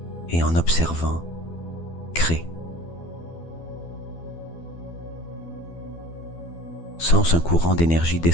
et en observant, crée. Sens un courant d'énergie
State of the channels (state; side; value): late; right; 12 ms